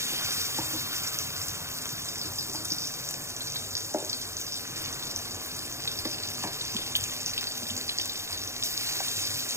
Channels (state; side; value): late; left; 0.13 ms